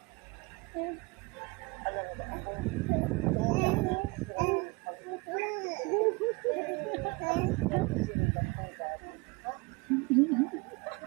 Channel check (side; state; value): left; quieter; 26.6 dB